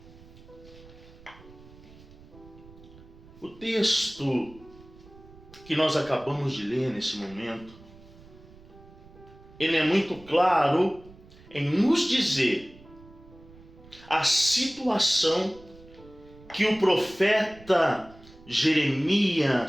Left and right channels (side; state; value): right; noise; rumble, 22 dB below the sound